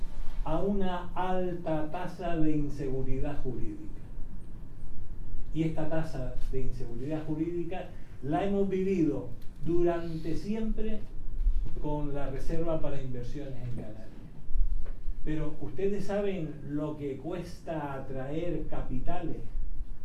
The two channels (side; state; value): both; identical; correlation 1.00